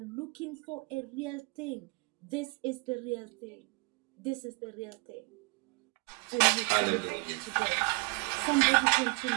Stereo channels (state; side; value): quieter; left; 29.0 dB